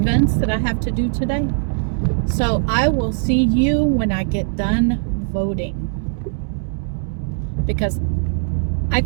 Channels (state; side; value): silent; left; digital silence